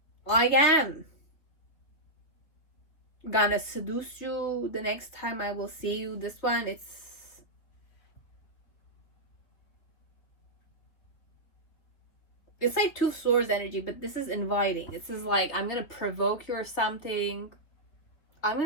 I am gonna seduce you the next time I will see you. This one, it's like two swords energy, but this is inviting. This is like I'm gonna provoke you or something. I'm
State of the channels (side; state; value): right; late; 3.4 ms